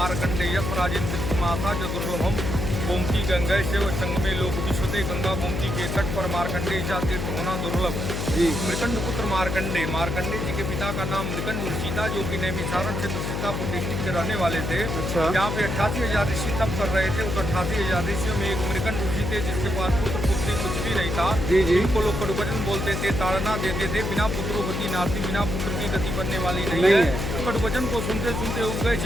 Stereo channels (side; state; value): left; noise; hum, 3 dB below the sound